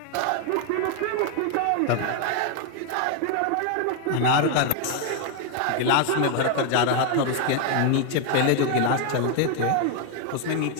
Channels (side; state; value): both; different; correlation 0.00